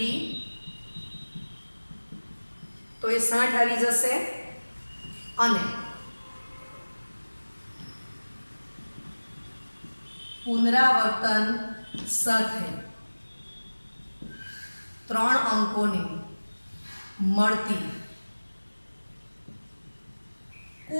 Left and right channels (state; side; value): inverted; both; correlation -1.00